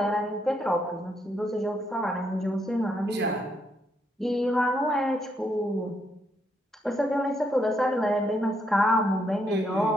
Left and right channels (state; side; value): normal; both; correlation 0.76